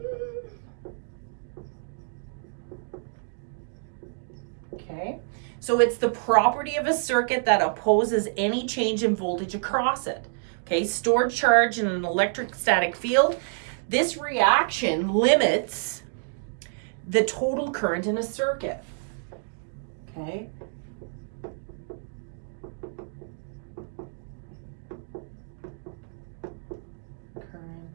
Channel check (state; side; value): silent; left; digital silence